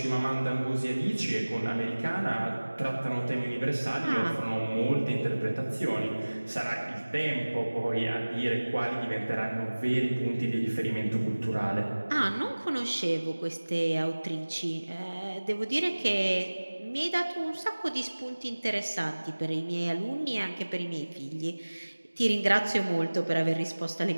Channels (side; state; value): both; inverted; correlation -1.00